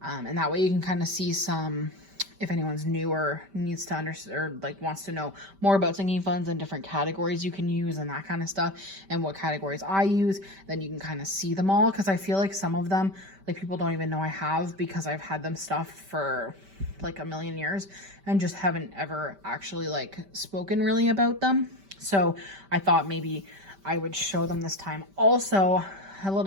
that way you can kind of see some, if anyone's new or needs to understand or like wants to know more about sinking funds and different categories you can use and that kind of stuff, and what categories I use, then you can kind of see them all. Because I feel like some of them, like, people don't even know I have, because I've had them stuffed for like a million years and just haven't ever actually like spoken really about them. So I thought maybe I would show them this time. Also, a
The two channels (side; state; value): left; late; 5.1 ms